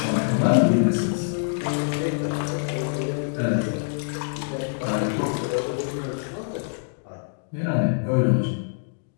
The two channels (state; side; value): silent; right; digital silence